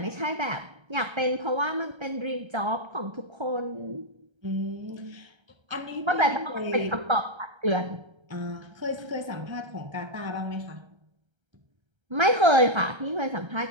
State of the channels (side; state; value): left; late; 1.3 ms